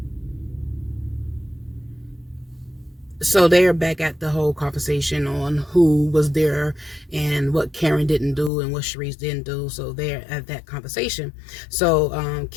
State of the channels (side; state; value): right; drops out; at 8.5 s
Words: So they're back at the whole conversation on who was there and what Karen didn't do and what Charisse didn't do. So they're at that conversation. So